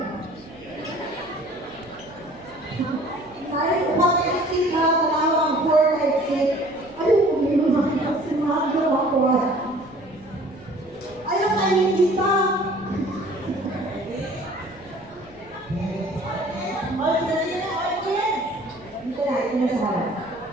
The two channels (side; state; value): right; noise; hum, 25 dB below the sound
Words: Saya pakai exit ha, talawang 4 exit. Ayaw ko may mga sinado ako. Ayaw kayo kita. Ito na sa harap.